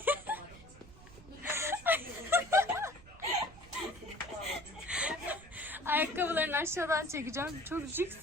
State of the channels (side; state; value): right; noise; rumble, 20 dB below the sound